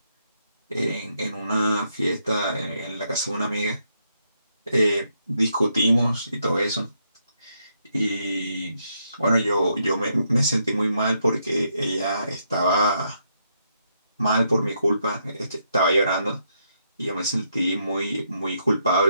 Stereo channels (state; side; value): inverted; both; correlation -0.77